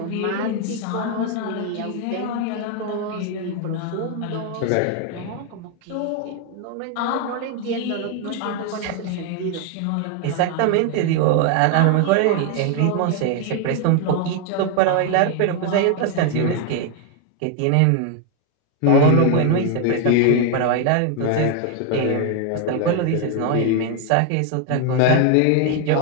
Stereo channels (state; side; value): different; both; correlation 0.01